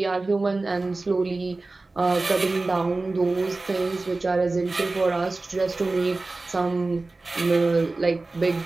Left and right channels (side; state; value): left; quieter; 3.3 dB